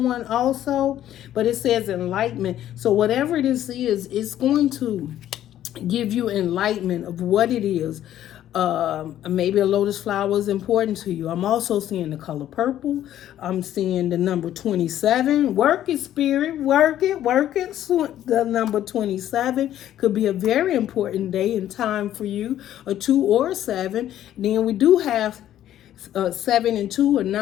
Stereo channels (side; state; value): right; quieter; 12.0 dB